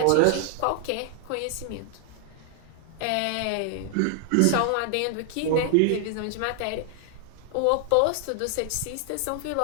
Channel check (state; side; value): different; both; correlation 0.00